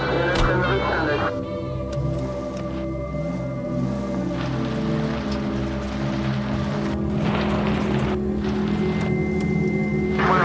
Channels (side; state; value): both; identical; correlation 1.00